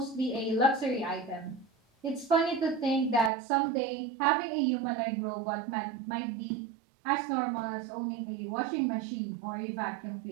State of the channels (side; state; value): left; drops out; at 3.3 s